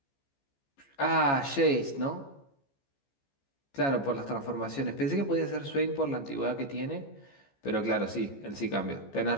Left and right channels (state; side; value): late; right; 15 ms